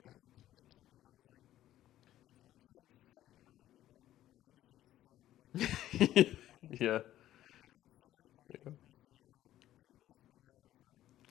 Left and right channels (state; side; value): quieter; right; 13.3 dB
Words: I tweeted something. I was like, it's actually insane how many people in my industry suck, like personality-wise. Yeah. Like, I've had so many clients express to me how their previous videographer